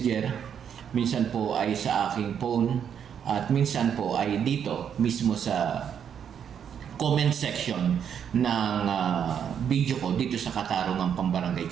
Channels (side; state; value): left; quieter; 8.2 dB